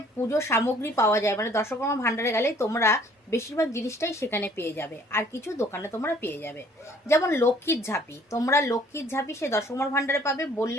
পুজোর সামগ্রী পাওয়া যায়, মানে দশকর্মা ভাণ্ডারে গেলে তোমরা বেশিরভাগ জিনিসটাই সেখানে পেয়ে যাবে, আর কিছু দোকানে তোমরা পেয়ে যাবে। যেমন লক্ষ্মীর ঝাঁপি, তোমরা লক্ষ্মীর ঝাঁপি সেই দশকর্মা ভাণ্ডারে পাবে,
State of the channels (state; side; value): normal; both; correlation 0.58